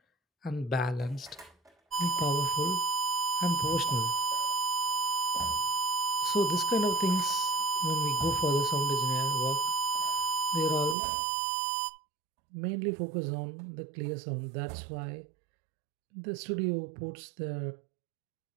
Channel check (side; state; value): left; drops out; at 11.0 s